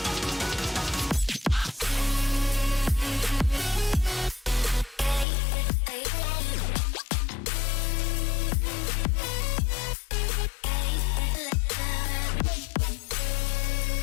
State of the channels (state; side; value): drops out; right; at 5.2 s